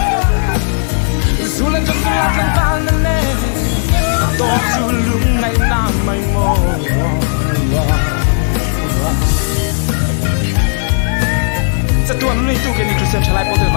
dù lên cho tôi ăn vào nên nè to dù lúc ngày nam mây mồ sẽ tuần này tu cái này Christian trở lại có thể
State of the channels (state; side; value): silent; right; digital silence